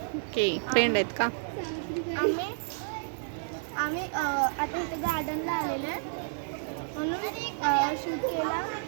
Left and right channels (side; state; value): left; silent; digital silence